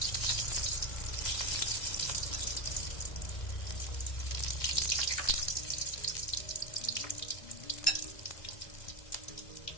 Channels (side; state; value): right; late; 2.1 ms